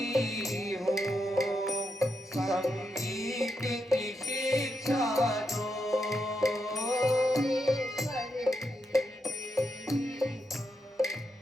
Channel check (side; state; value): both; normal; correlation 0.83